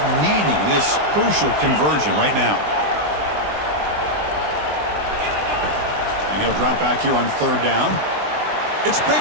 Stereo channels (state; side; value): late; left; 20 ms